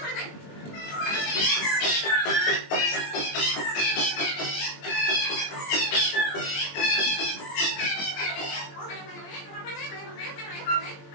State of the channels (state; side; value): late; right; 20 ms